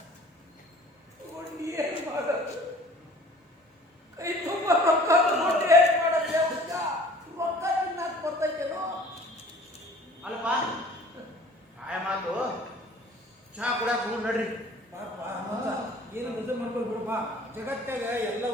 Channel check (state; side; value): normal; both; correlation 0.49